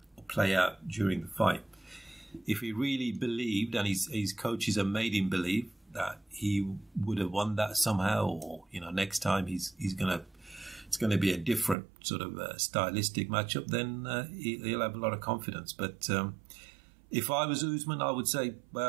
out during the fight. If he really believed, and his coaches have made him believe, that he would have won that somehow, or next time it's going to be a different sort of stylistic matchup, then he'll have a lot of confidence. But if I was Usman, I would say,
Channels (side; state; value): left; drops out; at 11.8 s